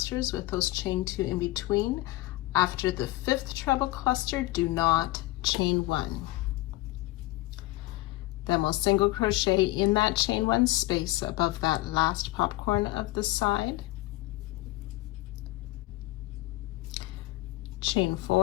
with those chain 2 in between. After the 5th treble cluster, do not chain 1. Then we'll single crochet in that chain 1 space above that last popcorn of the side, chain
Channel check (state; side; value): quieter; right; 19.0 dB